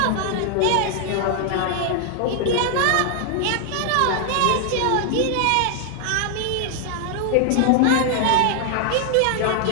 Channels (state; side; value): different; both; correlation 0.00